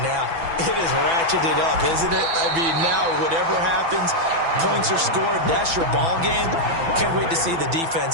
now? It is ratcheted up, isn't it? I mean, now whatever happens, points are scored, that's your ball game. Can't wait to see the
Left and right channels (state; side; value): late; left; 6.0 ms